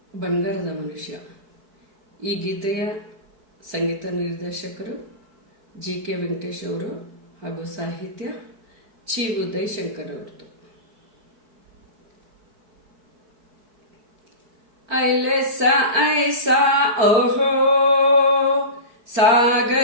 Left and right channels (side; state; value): left; late; 4.4 ms